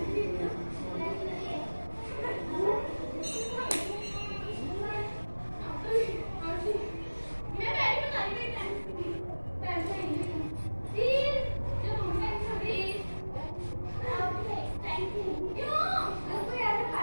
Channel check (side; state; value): both; inverted; correlation -1.00